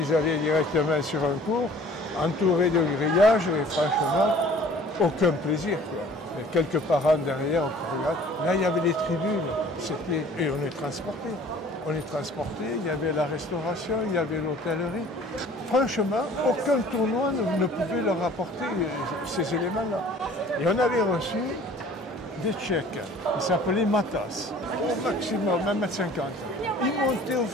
allaient directement sur un cours, entourés de grillages, et franchement, aucun plaisir, quoi. Et quelques parents derrière, on regarde. Là, il y avait les tribunes, et on est transportés. On est transportés, il y avait la restauration, il y avait l'hôtellerie. Franchement, aucun tournoi ne pouvait leur apporter ces éléments-là. Et on avait reçu des Tchèques, ils s'appelaient Matas, au maximum 1,50 m. Ils montaient au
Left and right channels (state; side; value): normal; both; correlation 0.50